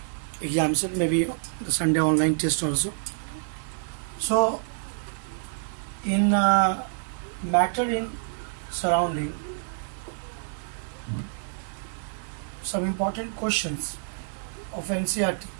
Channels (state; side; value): silent; left; 56 dB below the other